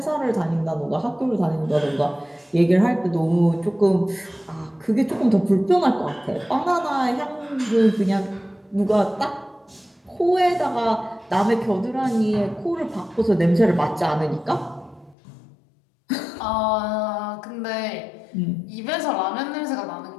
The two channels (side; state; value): right; drops out; at 15.2 s